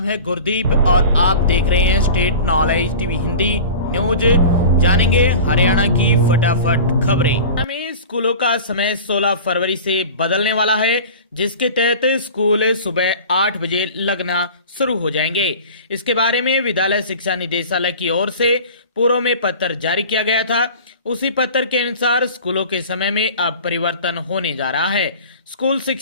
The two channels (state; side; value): inverted; both; correlation -0.37